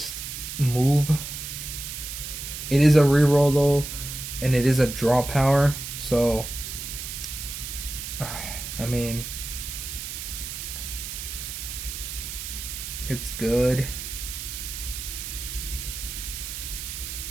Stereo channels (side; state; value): right; noise; hiss, 7 dB below the sound